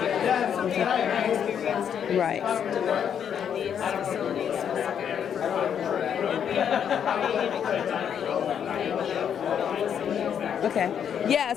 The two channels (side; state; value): right; quieter; 8.4 dB